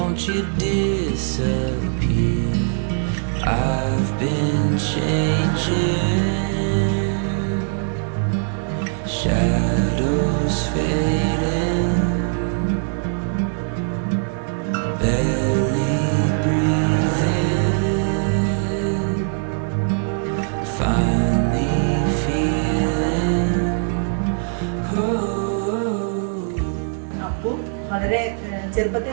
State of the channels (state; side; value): silent; left; digital silence